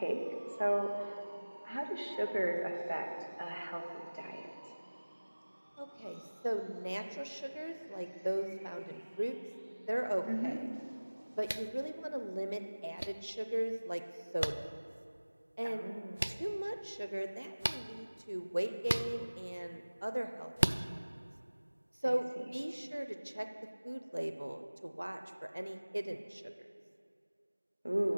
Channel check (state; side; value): inverted; both; correlation -1.00